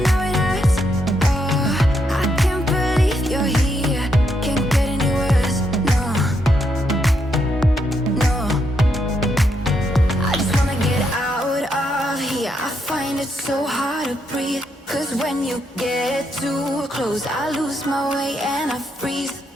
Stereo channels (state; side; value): normal; both; correlation 0.78